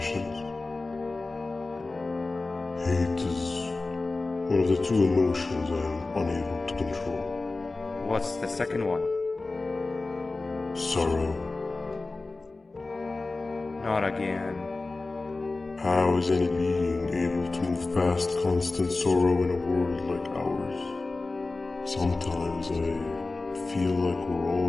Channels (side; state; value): right; quieter; 3.4 dB